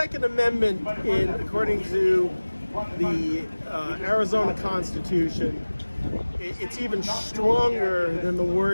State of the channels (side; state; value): both; inverted; correlation -1.00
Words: Amendment, according to the Arizona Constitution, it's even stronger than the